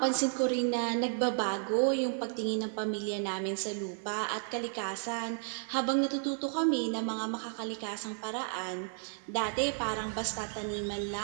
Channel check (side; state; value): left; silent; digital silence